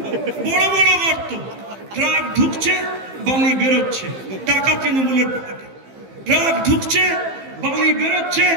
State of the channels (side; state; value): left; late; 15 ms